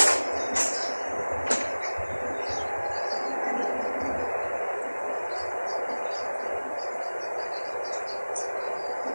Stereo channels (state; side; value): inverted; both; correlation -1.00